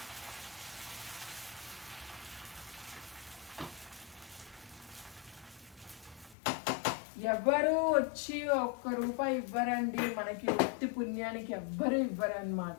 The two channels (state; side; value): drops out; right; at 6.4 s